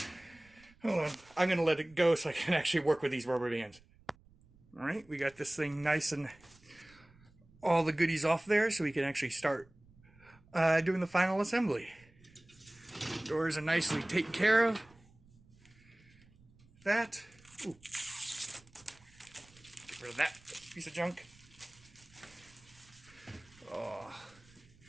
Hold on, I'm gonna let it go so I can actually work with these rubber bands. All right, we got this thing nice and all the goodies off there, so we can actually start doing the final assembly. Doors are nicely taken care of. That. Ooh. Get rid of that piece of junk. Oh.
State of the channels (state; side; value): noise; right; rumble, 27 dB below the sound